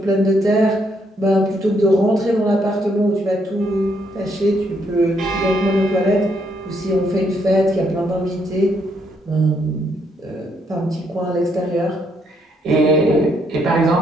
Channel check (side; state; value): both; normal; correlation 0.73